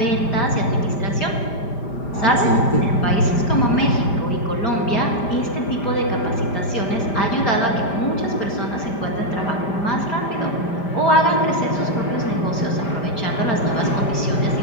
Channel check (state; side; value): late; right; 5.0 ms